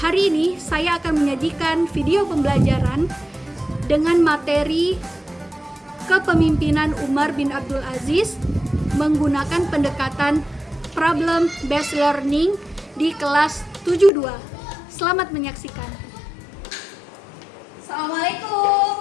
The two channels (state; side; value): drops out; right; at 14.1 s